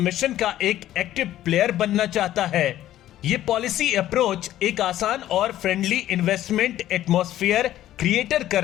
का एक एक्टिव प्लेयर बनना चाहता है। ये पॉलिसी अप्रोच एक आसान और फ्रेंडली इन्वेस्टमेंट एटमॉस्फेयर क्रिएटर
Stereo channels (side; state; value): right; quieter; 13.2 dB